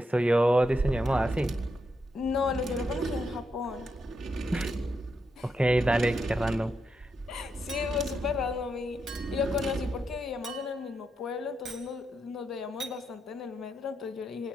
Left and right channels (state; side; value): normal; both; correlation 0.83